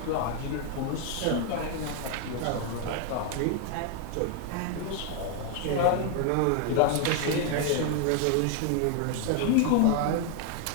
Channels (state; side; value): different; both; correlation 0.01